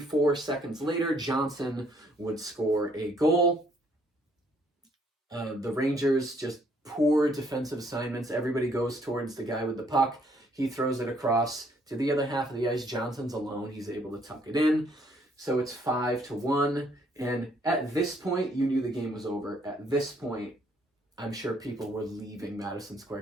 seconds later, Johnson would score a goal. The Rangers, just poor defensive assignments. Everybody goes towards the guy with the puck. He throws it across to the other half of the ice. Johnson's alone. He's able to tuck it in. So it's 5-1. And at this point, you knew the game was over. At this point, I'm sure people were leaving Madison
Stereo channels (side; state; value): both; normal; correlation 0.66